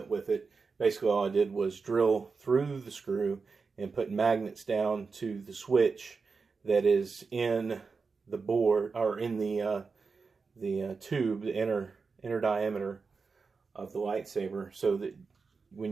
with it. Basically all I did was drill through the screw and put magnets down to the switch that is in the board, or in the tube, the inner diameter of the lightsaber, so that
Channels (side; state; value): left; quieter; 4.8 dB